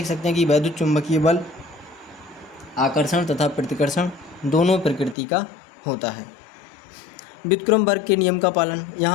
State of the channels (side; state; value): right; drops out; at 5.2 s